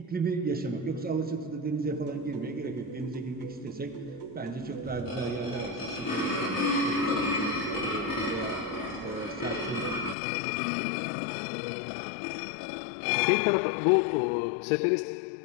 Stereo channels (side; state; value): right; drops out; at 10.2 s